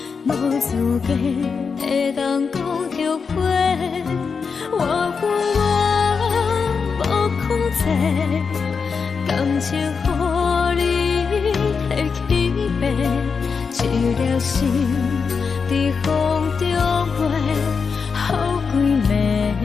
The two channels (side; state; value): right; quieter; 5.5 dB